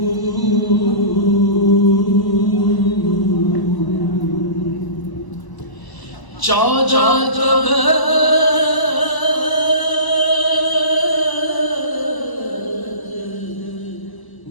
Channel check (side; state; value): right; late; 1.0 ms